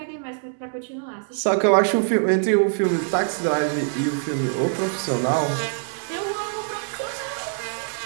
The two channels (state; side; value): silent; left; digital silence